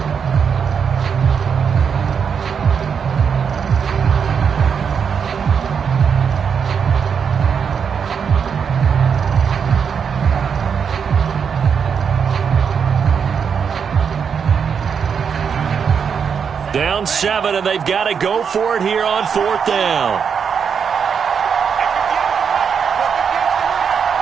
Down 7, and they've got to go for it here on 4th down.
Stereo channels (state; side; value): quieter; left; 6.8 dB